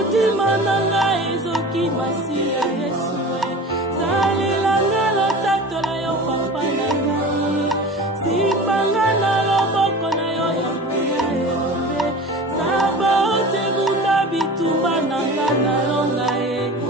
nanga ezoki Masia Yesu salelanga lotatola yo papa nanga sipanga na loboko na yo ya mbuya elombe saba ote bunda bitumba nanga na longa ya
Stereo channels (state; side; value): normal; both; correlation 0.36